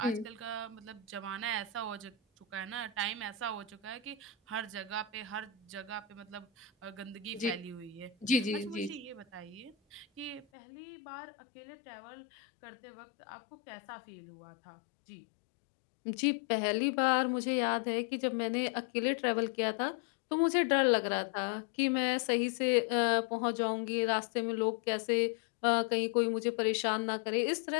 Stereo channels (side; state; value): right; drops out; at 10.5 s